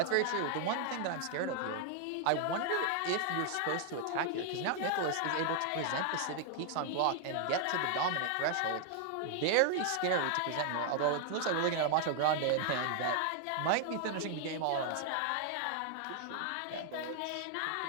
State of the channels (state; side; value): different; both; correlation 0.00